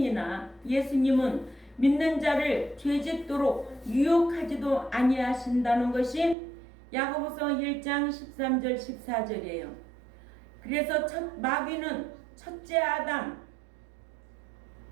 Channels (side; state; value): left; drops out; at 6.4 s